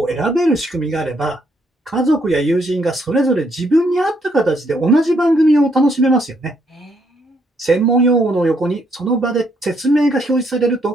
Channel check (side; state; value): both; normal; correlation 0.72